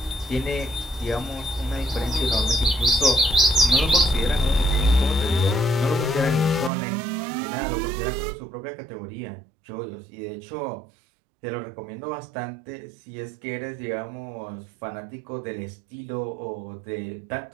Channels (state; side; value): drops out; left; at 6.7 s